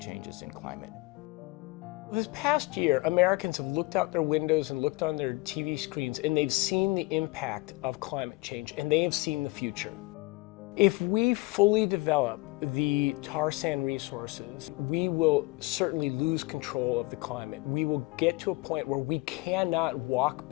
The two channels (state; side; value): quieter; right; 23.4 dB